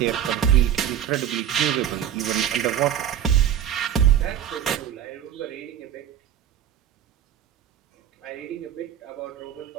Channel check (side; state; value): left; quieter; 10.0 dB